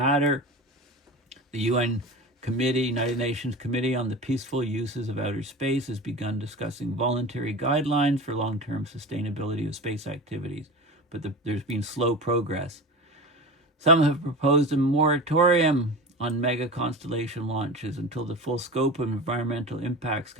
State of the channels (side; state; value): both; normal; correlation 0.30